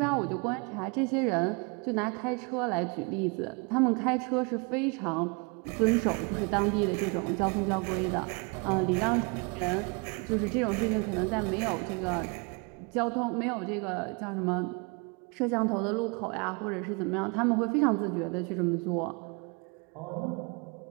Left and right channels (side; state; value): left; quieter; 31.7 dB